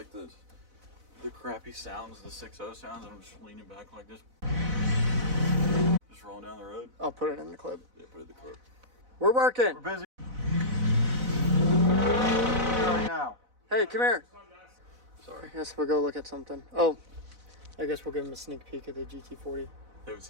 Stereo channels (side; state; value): left; late; 4.0 ms